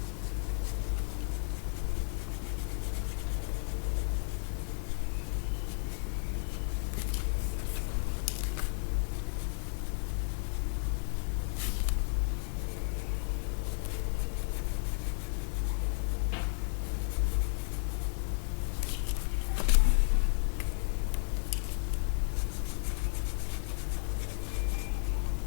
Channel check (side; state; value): right; silent; digital silence